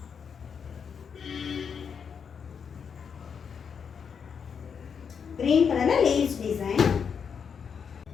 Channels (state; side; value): quieter; right; 6.7 dB